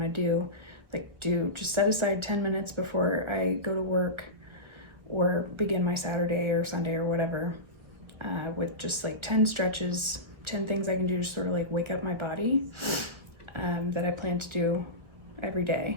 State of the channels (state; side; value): late; left; 1.4 ms